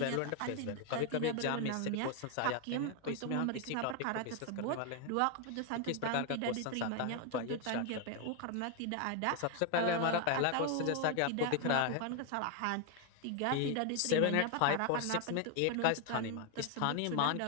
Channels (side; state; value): both; different; correlation 0.01